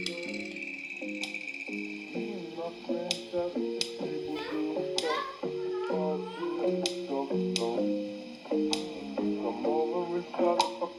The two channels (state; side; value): identical; both; correlation 1.00